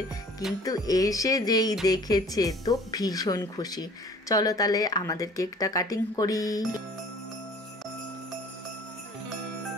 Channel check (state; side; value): normal; both; correlation 0.50